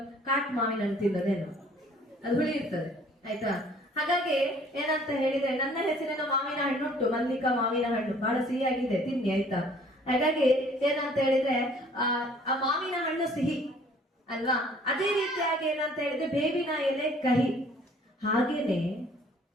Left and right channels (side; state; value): both; normal; correlation 0.56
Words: ಕಾಟ್ ಮಾವಿನ ಹಣ್ಣು ತಿನ್ನೋದೇನು, ಅದು ಹುಳಿ ಇರ್ತದೆ. ಆಯ್ತಾ? ಹಾಗಾಗಿ ಏನಂತ ಹೇಳಿದ್ರೆ, ನನ್ನ ಹೆಸರಿನ ಮಾವಿನ ಹಣ್ಣು ಉಂಟು, ಮಲ್ಲಿಕಾ ಮಾವಿನ ಹಣ್ಣು, ಬಹಳ ಸಿಹಿಯಾಗಿದೆ, ತಿನ್ನಿ. ಆಯ್ತಾ? ಹಾಗಾಗಿ ಏನಂತ ಹೇಳಿದ್ರೆ, ಆ ಮಾವಿನ ಹಣ್ಣು ಸಿಹಿ ಅಲ್ವಾ? ಅದೇ ರೀತಿಯಾಗಿ ಏನಂತ ಹೇಳಿದ್ರೆ ಬೇವಿನ ಎಲೆ ಕಹಿ. ಹಾಗೇನೆ